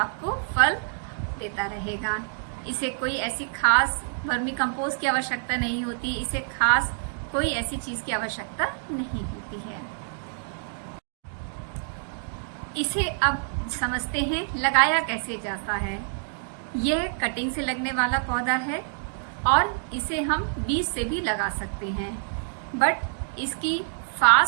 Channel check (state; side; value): silent; left; digital silence